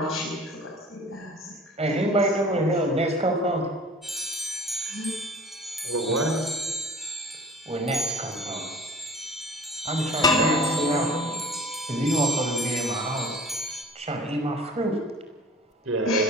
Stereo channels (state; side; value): normal; both; correlation 0.45